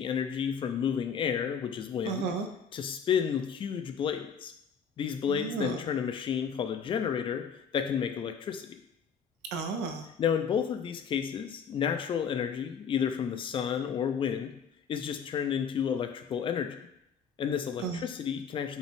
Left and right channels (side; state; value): right; quieter; 6.3 dB